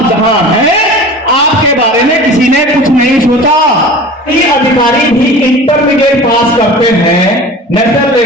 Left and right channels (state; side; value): normal; both; correlation 0.38